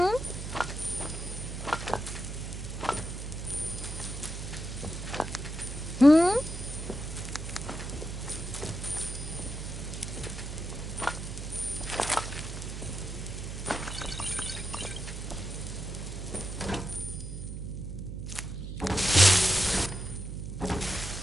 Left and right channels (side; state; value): right; noise; hum, 7 dB below the sound